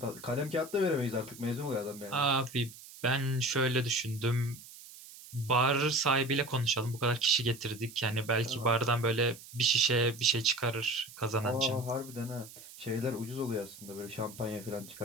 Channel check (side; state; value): right; noise; hiss, 17 dB below the sound